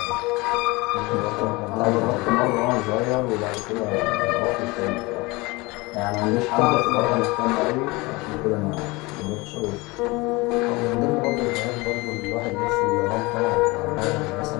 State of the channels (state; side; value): quieter; right; 23.8 dB